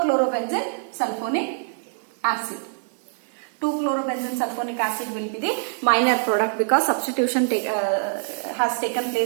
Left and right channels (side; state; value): left; silent; digital silence